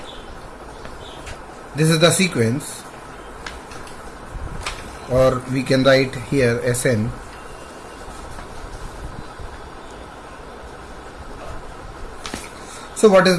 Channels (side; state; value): both; identical; correlation 1.00